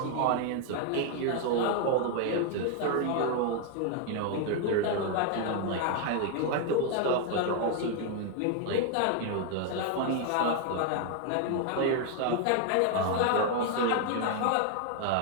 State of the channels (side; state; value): both; different; correlation 0.00